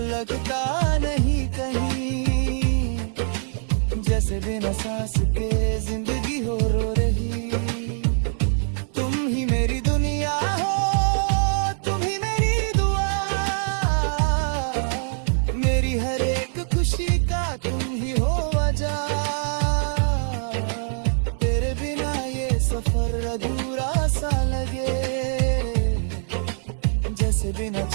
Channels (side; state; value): left; silent; 63 dB below the other